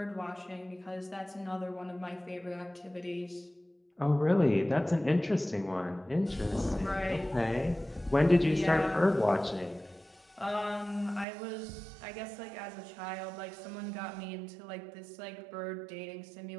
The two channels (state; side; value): drops out; left; at 11.2 s